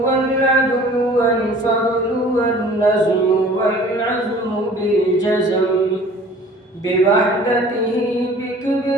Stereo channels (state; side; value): normal; both; correlation 0.48